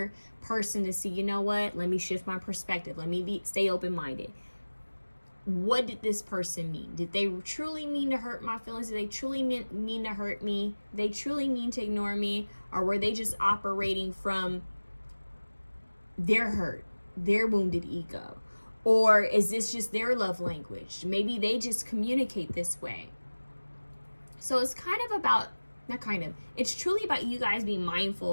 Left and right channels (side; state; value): both; inverted; correlation -1.00